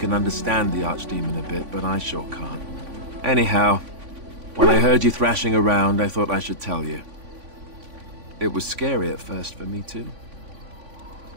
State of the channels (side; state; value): left; late; 3.5 ms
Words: understand the Archdemon a bit, but I sure can't. Anyhow, when I heard you thrashing around, I thought I should tell you. It was scary at first for me, too.